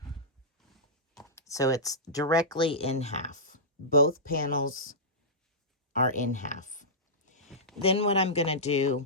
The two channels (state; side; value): normal; both; correlation -0.15